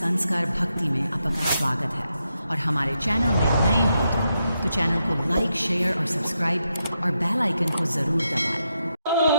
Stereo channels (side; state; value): both; inverted; correlation -0.84